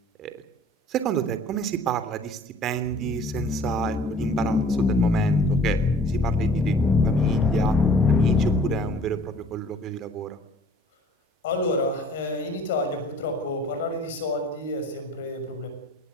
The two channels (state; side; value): normal; both; correlation 0.51